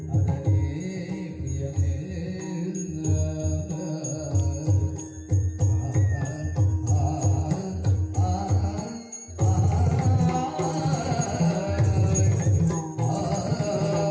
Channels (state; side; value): identical; both; correlation 1.00